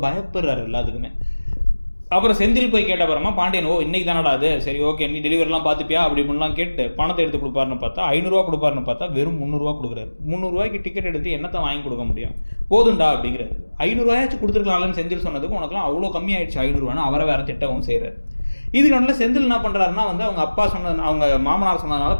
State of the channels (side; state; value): both; inverted; correlation -1.00